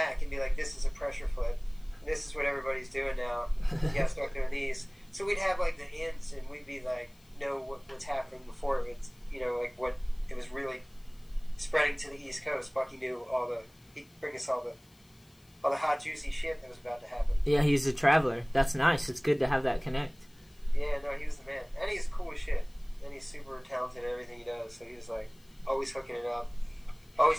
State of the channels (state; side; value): noise; left; hiss, 30 dB below the sound